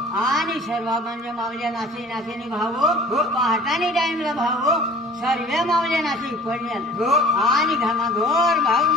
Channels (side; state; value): both; normal; correlation 0.47